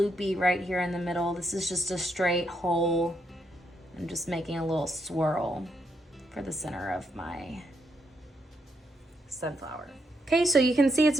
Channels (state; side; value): normal; both; correlation 0.78